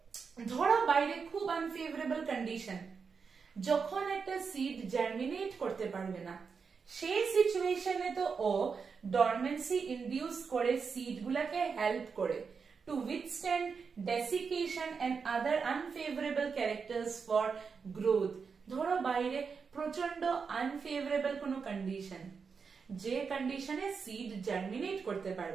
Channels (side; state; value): left; quieter; 5.6 dB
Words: ধরো বাইরে খুব আনফেভারেবল কন্ডিশন, যখন একটা সিড জার্মিনেট করতে পারবে না, সেই সিচুয়েশনে তো ও ডরমেন্সি ইনডিউস করে সিড গুলাকে হেল্প করে to withstand desiccation and other unfavorable characters for growth. ধরো বাইরে প্রচন্ড আনফেভারেবল কোনো কন্ডিশন, যে কন্ডিশনে সিড জার্মিনেট করতে